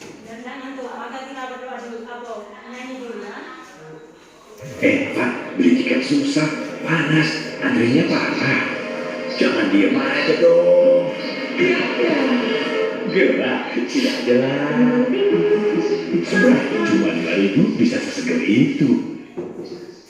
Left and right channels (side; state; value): both; identical; correlation 1.00